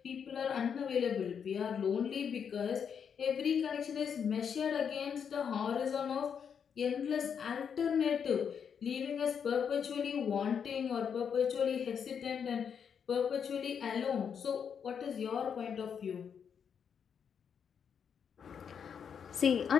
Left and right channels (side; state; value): right; quieter; 7.3 dB